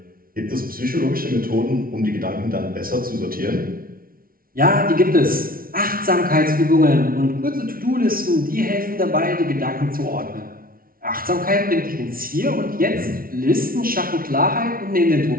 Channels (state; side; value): late; left; 0.43 ms